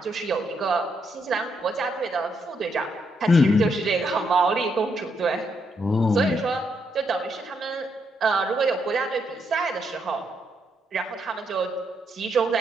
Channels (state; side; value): normal; both; correlation 0.78